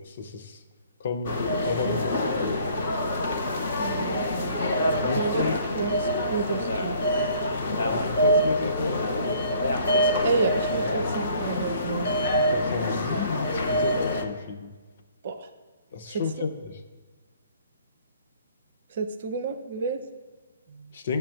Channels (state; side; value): inverted; both; correlation -0.57